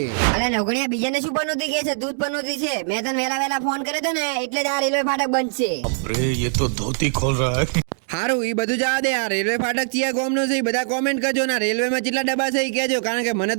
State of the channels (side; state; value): left; silent; digital silence